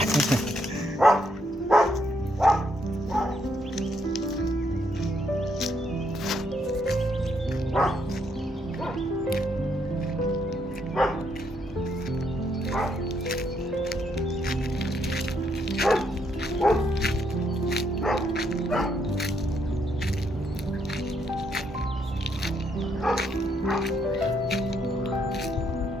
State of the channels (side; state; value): both; normal; correlation 0.74